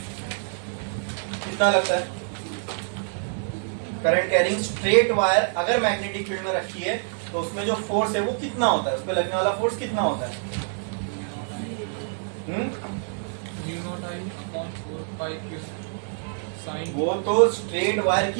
कितना लगता है। करंट कैरिंग स्ट्रेट वायर अगर मैग्नेटिक फील्ड में रखी है तो उसमें जो फोर्स है वो कितना होता है, उस पे लगने वाला फोर्स कितना होता है, वो तो स्ट्रेट वायर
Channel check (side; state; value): left; silent; 61 dB below the other